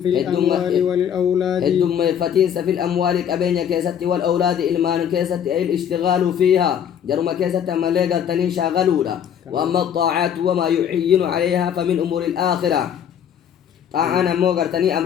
في الأموال والأولاد الدم فتين في الأموال كبين كيست والأولاد إلمان كيست أي الاشتغال فيها جرم كيست ما لقر تني شاغلونا وأما الطاعات وما يعين عليها فمن أمور الآخرة طاعنا موغر تني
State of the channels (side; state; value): right; quieter; 8.8 dB